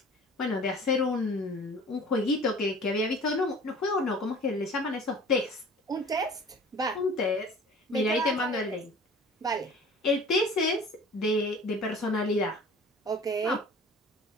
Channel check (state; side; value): normal; both; correlation 0.45